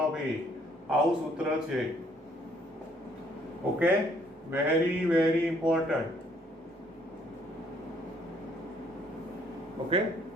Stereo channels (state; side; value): normal; both; correlation 0.65